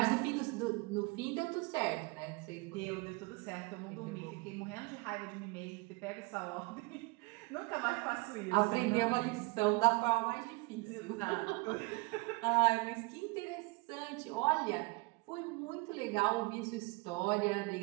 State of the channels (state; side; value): quieter; left; 26.1 dB